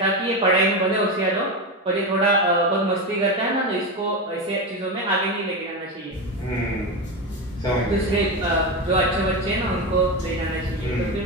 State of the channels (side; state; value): both; normal; correlation 0.16